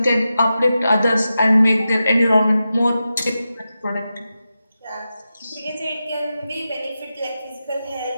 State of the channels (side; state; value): both; inverted; correlation -0.91